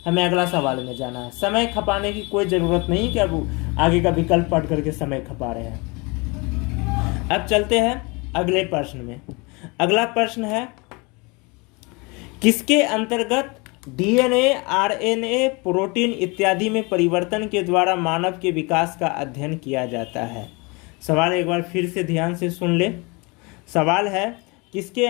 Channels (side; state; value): right; quieter; 27.9 dB